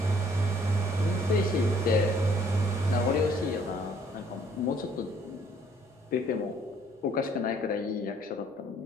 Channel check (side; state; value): both; normal; correlation 0.61